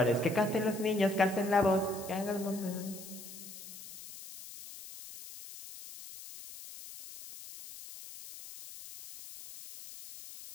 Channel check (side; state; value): left; noise; hiss, 14 dB below the sound